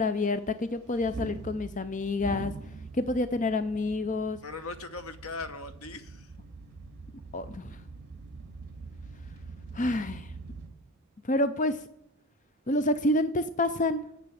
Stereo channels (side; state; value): both; normal; correlation 0.37